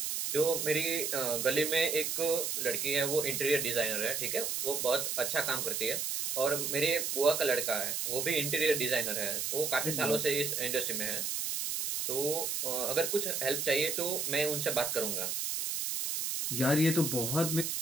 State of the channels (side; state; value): right; noise; hiss, 1 dB below the sound